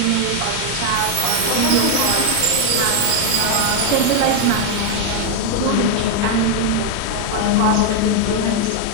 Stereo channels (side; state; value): both; different; correlation 0.01